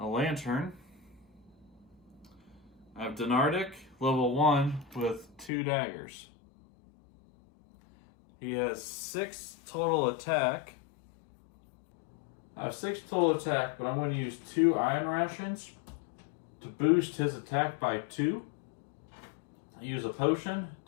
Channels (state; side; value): drops out; right; at 5.5 s